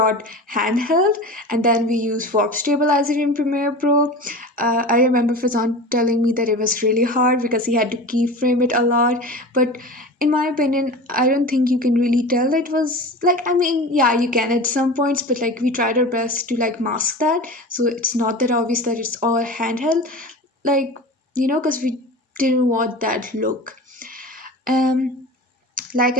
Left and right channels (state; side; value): normal; both; correlation 0.33